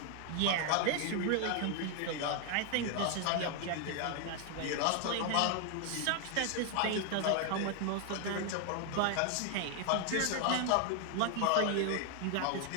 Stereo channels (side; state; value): both; different; correlation 0.00